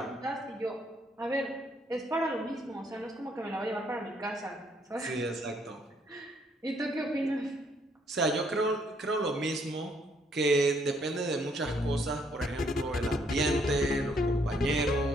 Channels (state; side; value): normal; both; correlation 0.69